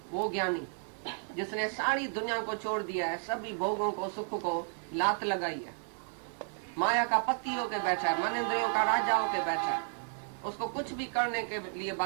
वो ज्ञानी, जिसने सारी दुनिया को छोड़ दिया है, सभी भोगों को सुख को लात लगाई है, माया का पति होके बैठा है, मन इंद्रियों का राजा होके बैठा है। उसको कुछ भी करने के लिए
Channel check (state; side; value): silent; left; 56 dB below the other